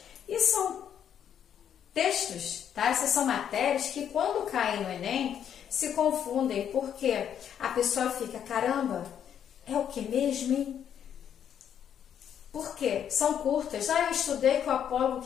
e são textos, tá? Essas são matérias que quando caem no Enem se confundem, porque a pessoa fica, caramba, é o que mesmo, hein? Por quê? São curtas. Eu estudei com o apólogo. O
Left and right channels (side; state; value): right; quieter; 9.1 dB